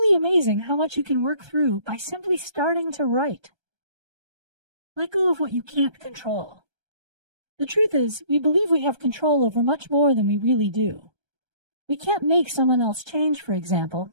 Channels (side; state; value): left; late; 1.3 ms